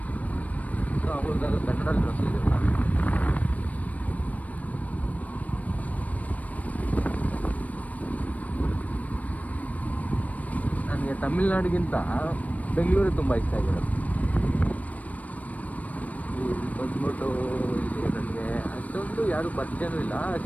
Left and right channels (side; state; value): right; late; 0.070 ms